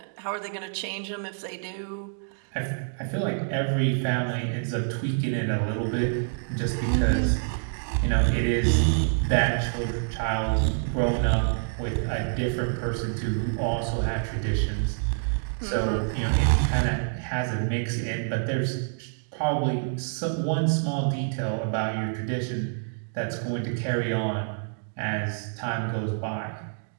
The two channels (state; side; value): silent; left; digital silence